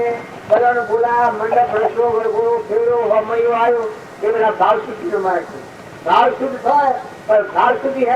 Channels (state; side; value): identical; both; correlation 1.00